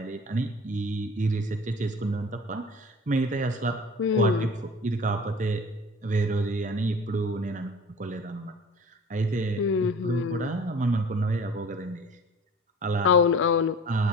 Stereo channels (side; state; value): both; normal; correlation 0.42